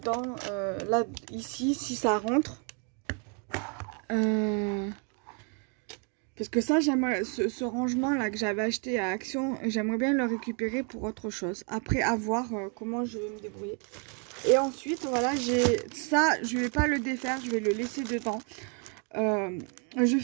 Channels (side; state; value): left; quieter; 38.9 dB